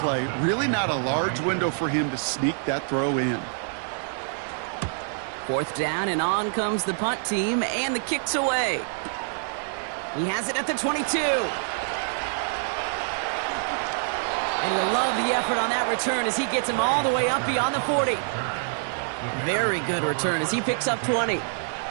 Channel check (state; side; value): silent; left; digital silence